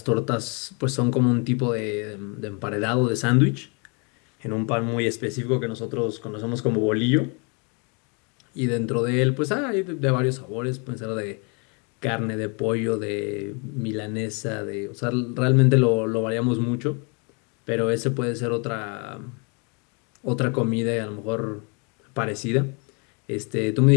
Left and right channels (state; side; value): quieter; right; 34.2 dB